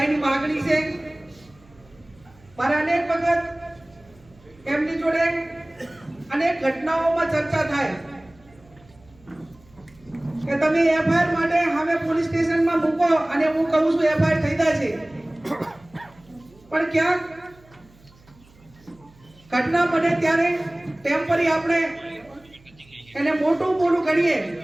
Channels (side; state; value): right; noise; hum, 27 dB below the sound